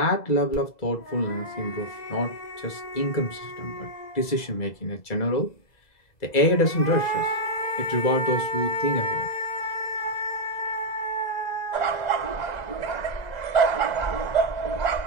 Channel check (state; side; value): late; right; 2.0 ms